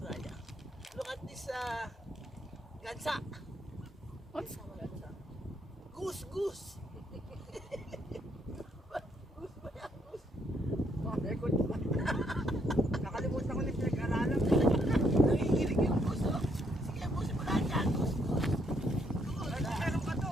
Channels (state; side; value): normal; both; correlation 0.72